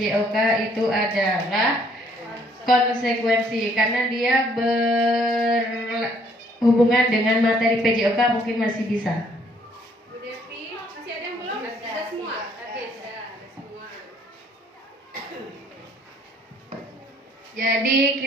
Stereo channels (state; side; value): normal; both; correlation 0.64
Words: itu adalah konsekuensi karena dia berhubungan dengan materi PJOK mungkin masih bisa. Bu Devi, masih ada yang belum? Ada semua? Ada semua. Jadi